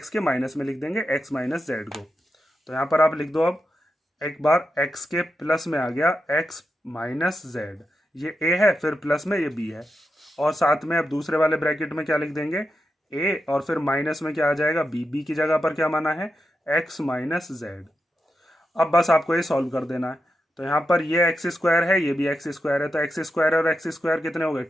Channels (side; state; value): both; normal; correlation 0.87